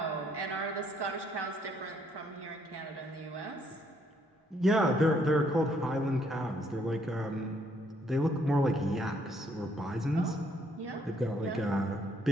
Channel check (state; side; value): normal; both; correlation 0.69